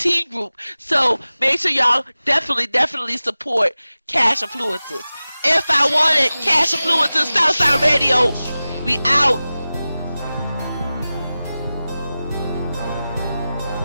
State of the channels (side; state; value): both; inverted; correlation -0.96